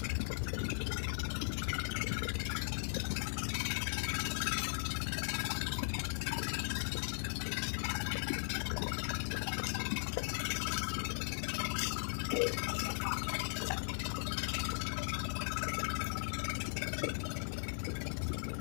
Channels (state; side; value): silent; right; 52 dB below the other